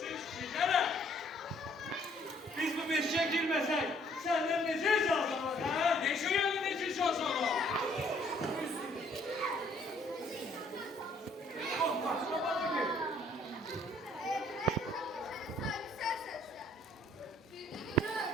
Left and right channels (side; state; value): both; normal; correlation 0.62